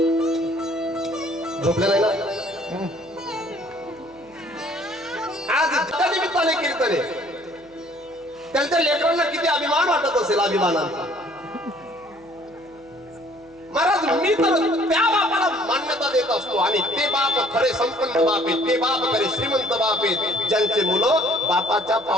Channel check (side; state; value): right; noise; hum, 30 dB below the sound